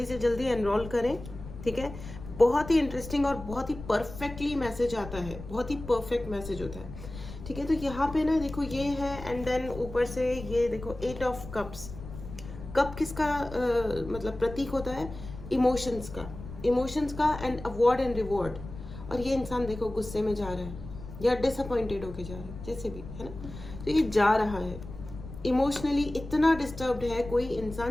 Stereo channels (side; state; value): left; noise; rumble, 12 dB below the sound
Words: से जल्दी एनरोल करें, ठीक है। बहुत ही इंटरेस्टिंग और बहुत ही परफेक्टली मैसेज आता है, बहुत ही परफेक्ट मैसेज होता है, ठीक है। तो यहाँ पे ना देखो ये है, एंड देन ऊपर से ये देखो 8 ऑफ कप्स। कप किसका मतलब प्रतीक होता है? इमोशंस का, इमोशंस का एंड अवॉर्ड एंड रिवॉर्ड, और ये इंसान देखो गुस्से में जा रहा है या डिसअपॉइंटेड होके जा रहा है, जैसे भी है ना, तो ये जा रहा है इमोशनली इतना डिस्टर्ब्ड है। कोई